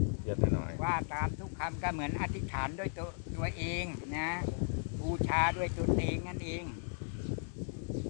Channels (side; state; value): right; silent; digital silence